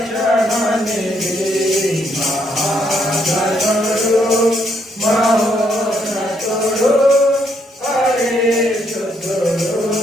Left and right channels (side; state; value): both; normal; correlation 0.73